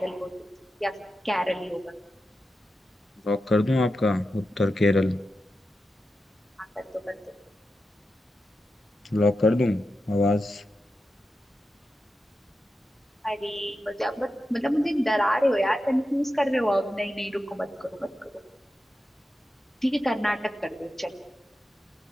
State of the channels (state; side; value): normal; both; correlation 0.90